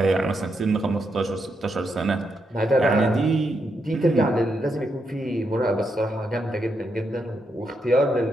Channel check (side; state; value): both; normal; correlation 0.81